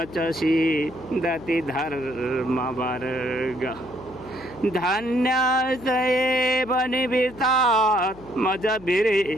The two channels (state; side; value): noise; right; hum, 22 dB below the sound